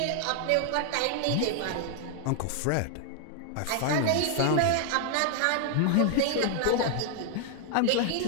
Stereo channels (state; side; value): different; both; correlation 0.00